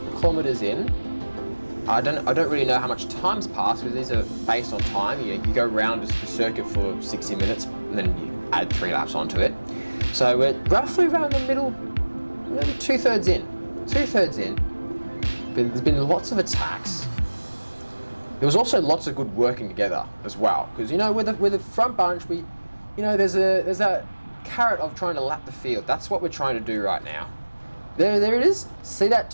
kilometers in. I don't really know how much time's passed because these are based on time. You go around the circuit for 60 minutes and then you add 3 laps onto it. So we're roughly around the middle, maybe 2/3 in. 2/3 in. But there's been lots of attacks. There was also lots of good working together as well, because with the front bunch, there's that carrot of trying to lap the field. That's what we're trying to do right now. There it is. See that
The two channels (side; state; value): both; inverted; correlation -1.00